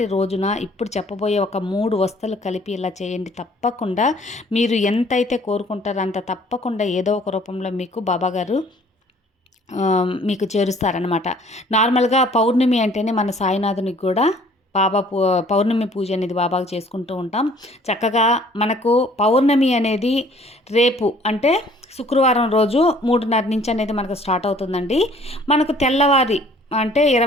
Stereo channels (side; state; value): both; normal; correlation 0.56